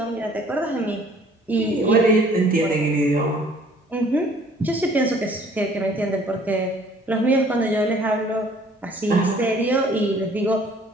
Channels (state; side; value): normal; both; correlation 0.56